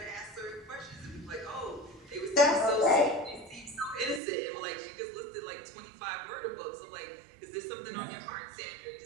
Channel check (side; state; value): left; drops out; at 4.2 s